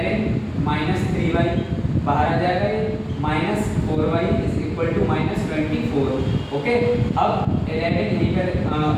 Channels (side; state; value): both; identical; correlation 1.00